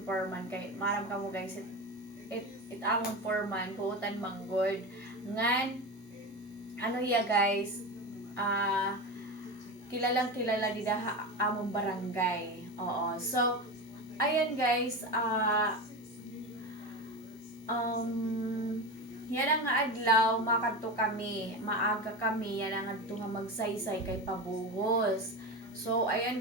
foreman kay maram ka mo guys it amon foreman buutan manggod ngan ano ya guys kilalang kilala di daha amon barangay. Oo, so ayan guys yan ang adlaw makadto kami maaga kami yan ang adto nga magsaysay kay pabuhos. So ayan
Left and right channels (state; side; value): normal; both; correlation 0.22